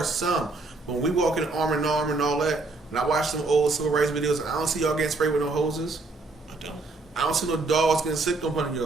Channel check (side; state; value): left; quieter; 3.5 dB